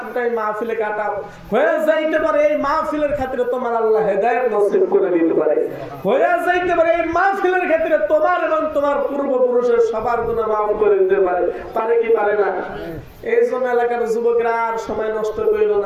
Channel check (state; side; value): identical; both; correlation 1.00